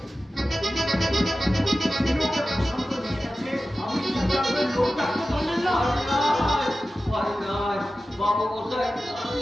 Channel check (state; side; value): normal; both; correlation 0.94